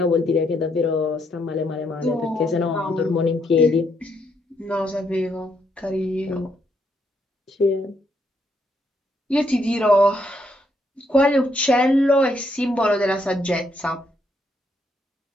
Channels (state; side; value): normal; both; correlation 0.75